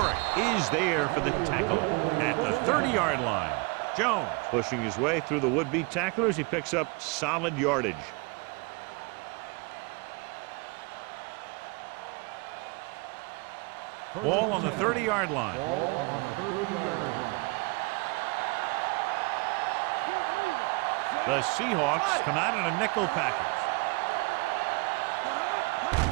is there for the tackle at the 30-yard line. Jones pushing his way through the would-be tacklers. He picks up solid yardage. Ball on the 30-yard line. Ball on the 30-yard line. Keep moving. The Seahawks come out in a nickel package. There we go. Watch the snap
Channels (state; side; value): quieter; left; 28.7 dB